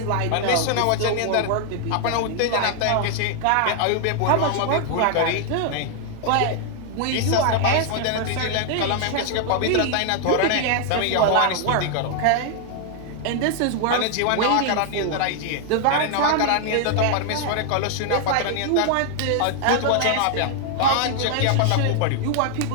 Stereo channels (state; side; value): different; both; correlation 0.00